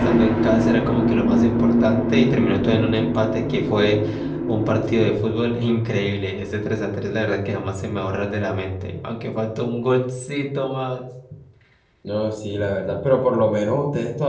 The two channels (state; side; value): identical; both; correlation 1.00